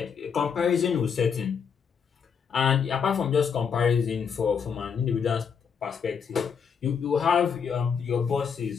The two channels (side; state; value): right; quieter; 6.7 dB